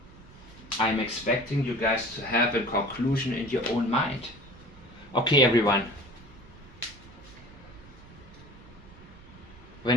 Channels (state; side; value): noise; right; rumble, 21 dB below the sound